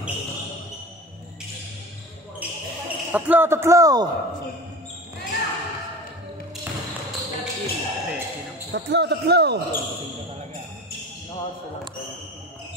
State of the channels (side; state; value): both; normal; correlation 0.34